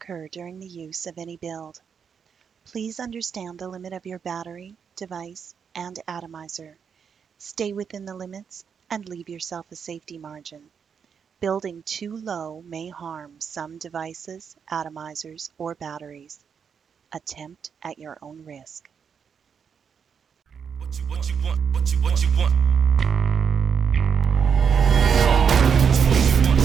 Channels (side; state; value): left; quieter; 6.9 dB